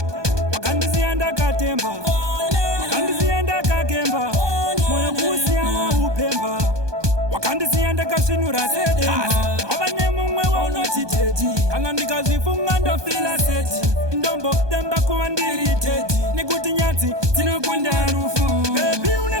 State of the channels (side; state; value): left; late; 1.2 ms